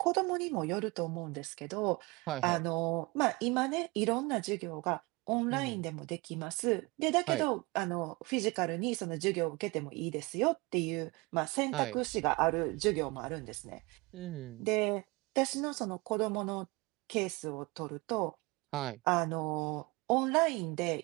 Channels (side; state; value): left; quieter; 25.0 dB